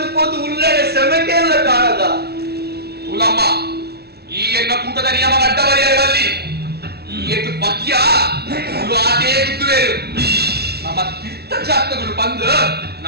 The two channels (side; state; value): left; late; 0.47 ms